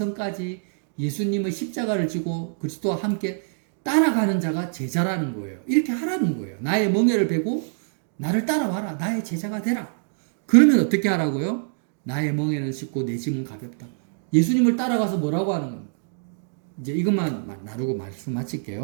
예수님의 십자가를 지고 그리스도와 함께 따라가는 자가 제자라는 거예요. 이렇게 하라는 거예요. 나의 멍에를 베고 나를 따라와라. 나의 제자가 되라. 그러면 어떻게 하라고요? 나의 멍에는 쉽고 내 짐은 가볍다. 예수님을 따라가서 뭐라고 하는 겁니까? 이제 이것만 나누고 말씀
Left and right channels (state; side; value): silent; left; digital silence